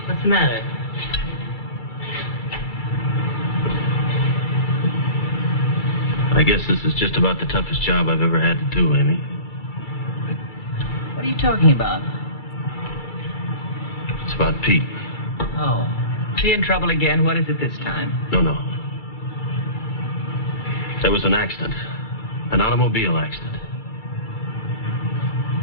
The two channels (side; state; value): right; late; 2.3 ms